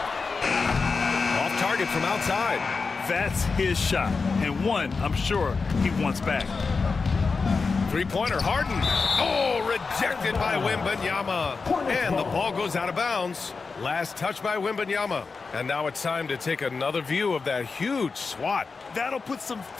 Off target from outside. That's his shot, and one I'm sure he wants back. Three-pointer, Harden. Oh, rejected by Wembanyama. And the ball goes out of bounds. Last touch by Wembanyama. And now it's time to take another view of that huge swat. That'll put some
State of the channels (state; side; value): quieter; right; 4.6 dB